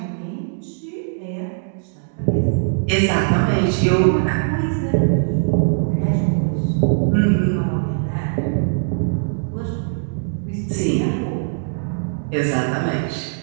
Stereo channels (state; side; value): silent; left; digital silence